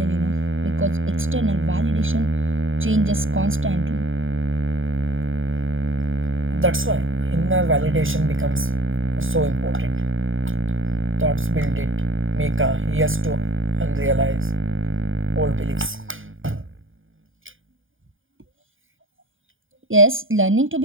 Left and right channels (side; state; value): left; late; 0.58 ms